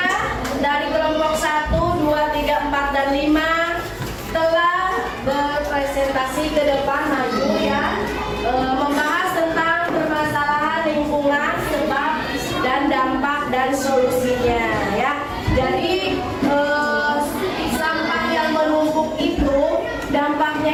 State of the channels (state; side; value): identical; both; correlation 1.00